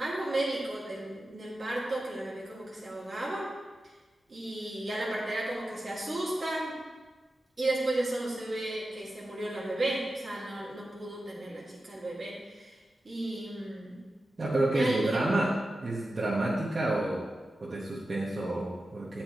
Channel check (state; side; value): normal; both; correlation 0.92